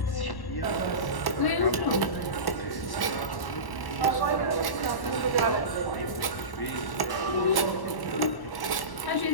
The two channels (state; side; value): late; right; 1.1 ms